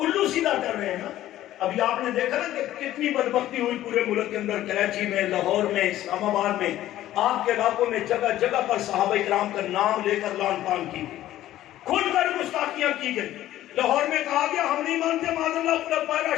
سیدھا کر رہے ہیں نا۔ ابھی آپ نے دیکھا نا کہ کتنی بدبختی ہوئی پورے ملک کے اندر، کراچی میں، لاہور میں، اسلام آباد میں، آپ کے علاقوں میں جگہ جگہ پر صحابہ کرام کا نام لے کر لعن طعن کی، کھل کر گستاخیاں کی گئی۔ لاہور میں کہا گیا ہم نہیں مانتے معاذ اللہ خلفائے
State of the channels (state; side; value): quieter; right; 13.8 dB